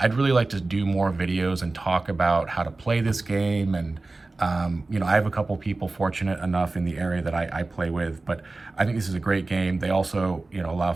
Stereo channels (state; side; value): quieter; left; 3.3 dB